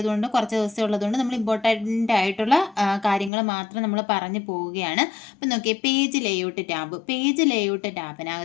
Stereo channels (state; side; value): drops out; right; at 3.3 s